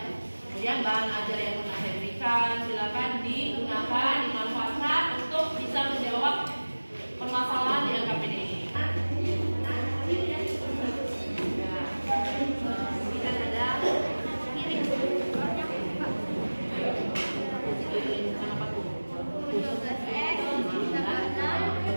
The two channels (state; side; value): inverted; both; correlation -1.00